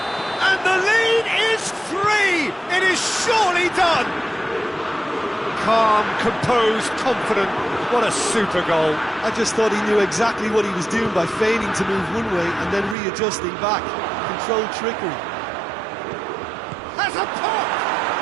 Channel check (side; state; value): left; drops out; at 13.0 s